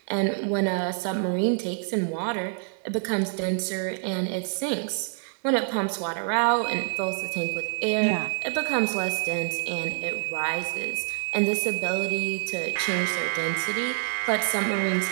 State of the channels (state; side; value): silent; left; 59 dB below the other